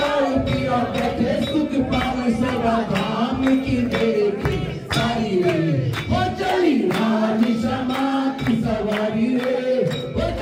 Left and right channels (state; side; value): identical; both; correlation 1.00